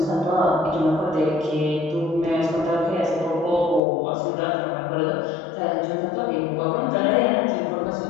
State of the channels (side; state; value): right; drops out; at 3.8 s